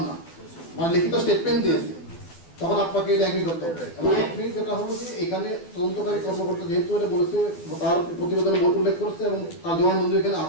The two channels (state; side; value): late; right; 12 ms